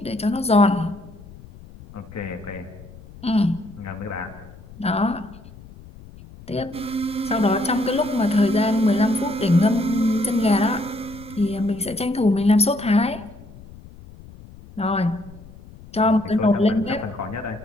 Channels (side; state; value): left; noise; rumble, 19 dB below the sound